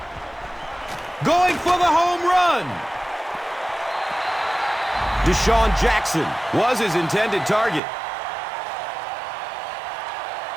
Going for the home run. Deshaun Jackson was his intended target.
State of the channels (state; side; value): drops out; left; at 7.8 s